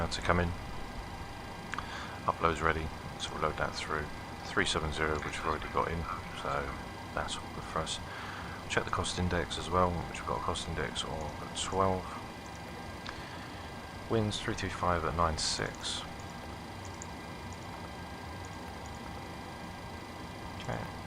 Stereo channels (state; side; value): identical; both; correlation 1.00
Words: to come in. Upload's ready, so we'll load that through. 370, which we've already got in, so that's all good for us. Check the cost index as well, which we've got a cost index of 12. Winds 325 at 9.6. Okay.